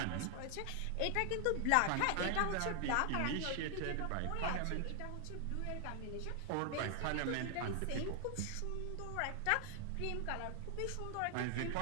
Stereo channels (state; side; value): different; both; correlation 0.00